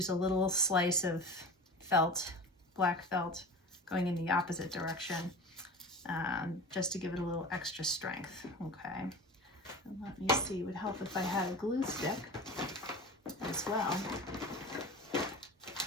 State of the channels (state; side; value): normal; both; correlation 0.33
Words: a little slice of felt, black felt, going in the opposite direction, just to give it a little extra strength. Okay. And let me see, it would help if I had a glue stick as well.